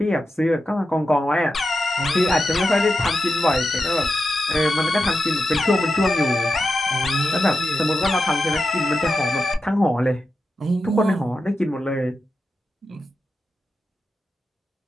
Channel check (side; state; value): both; normal; correlation 0.90